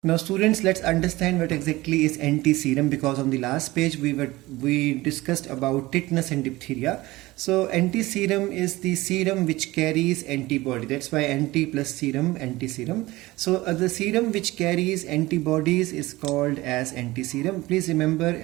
Now students, let's understand what exactly is anti-serum, because on the last page we discussed about tetanus and diphtheria. So anti-serum is the serum which carries antibody. That's why anti plus serum, anti-serum. So the serum which carries antibodies is called as anti-serum. Please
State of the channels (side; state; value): left; quieter; 19.4 dB